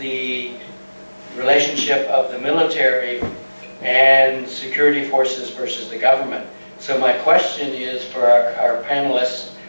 relationship of the military and security forces versus the government. So my question is for our panelists,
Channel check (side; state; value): both; inverted; correlation -1.00